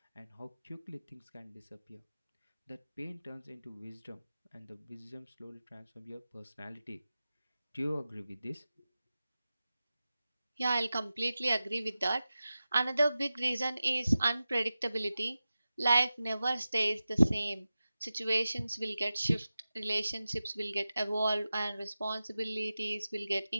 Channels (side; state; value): both; inverted; correlation -0.94